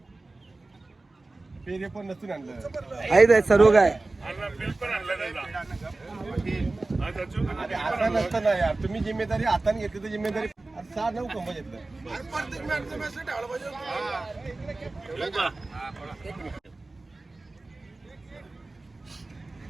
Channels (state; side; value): quieter; left; 3.2 dB